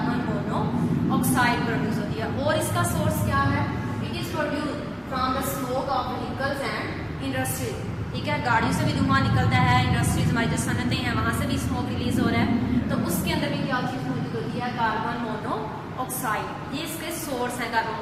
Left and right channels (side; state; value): both; identical; correlation 1.00